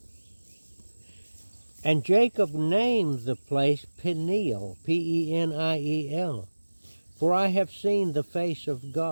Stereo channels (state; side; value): inverted; both; correlation -1.00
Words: And Jacob named the place Peniel, Peniel, for I have seen the face of